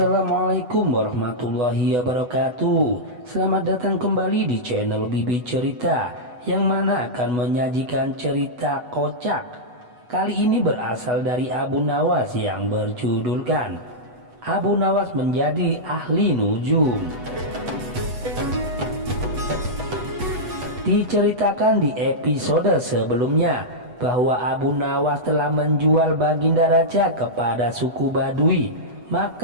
warahmatullahi wabarakatuh. Selamat datang kembali di channel Bibi Cerita, yang mana akan menyajikan cerita kocak. Kali ini berasal dari Abu Nawas yang berjudulkan Abu Nawas menjadi ahli nujum. Diceritakan di episode sebelumnya bahwa Abu Nawas telah menjual Baginda Raja kepada suku Badui,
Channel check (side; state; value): left; late; 8.1 ms